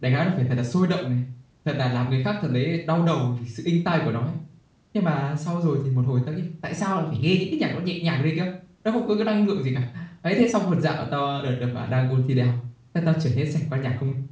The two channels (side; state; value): both; identical; correlation 1.00